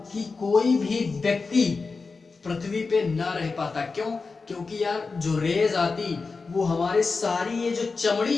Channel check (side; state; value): right; quieter; 4.3 dB